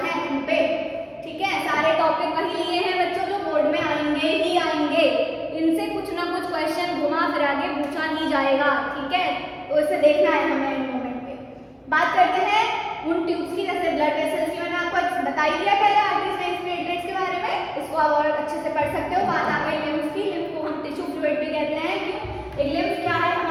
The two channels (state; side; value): identical; both; correlation 1.00